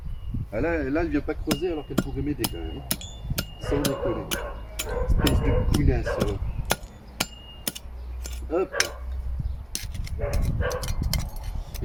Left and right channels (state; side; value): identical; both; correlation 1.00